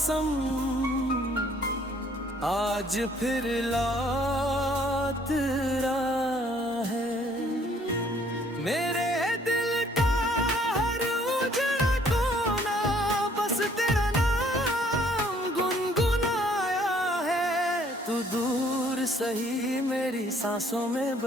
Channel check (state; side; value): normal; both; correlation 0.61